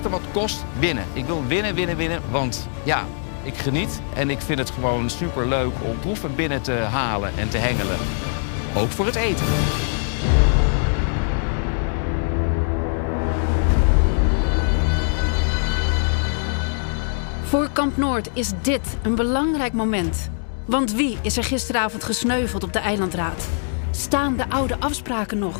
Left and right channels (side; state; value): right; silent; digital silence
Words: wat kost winnen. Ik wil winnen, want ja, ik geniet en ik vind het gewoon superleuk om proeven binnen te halen en te hengelen. Ook voor het eten. Voor Kamp Noord is dit een belangrijk moment. Want wie is er gisteravond gesneuveld op de eilandraad? Staan de oude afspraken nog?